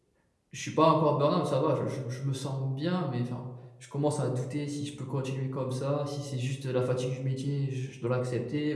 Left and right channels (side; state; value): both; identical; correlation 1.00